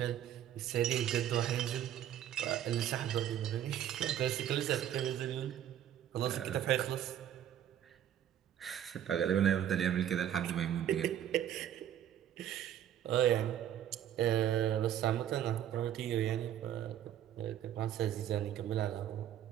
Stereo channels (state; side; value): quieter; left; 10.7 dB